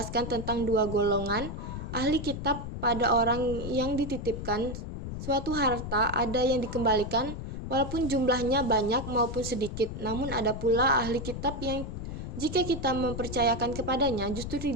tentang dua golongan ahli kitab pada orang yang dititipkan suatu harta, ada yang dikembalikan walaupun jumlahnya banyak maupun sedikit, namun ada pula ahli kitab yang jika kita mempercayakan kepadanya justru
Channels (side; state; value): left; noise; rumble, 7 dB below the sound